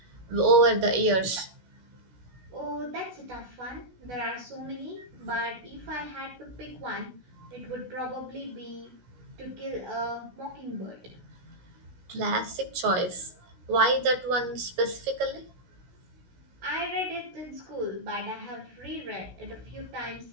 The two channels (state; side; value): late; left; 16 ms